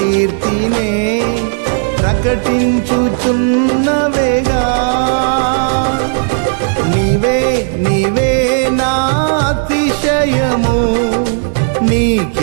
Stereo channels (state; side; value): silent; left; digital silence